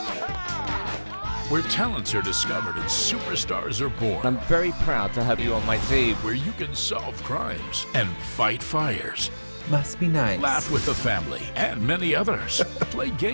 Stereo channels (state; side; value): inverted; both; correlation -1.00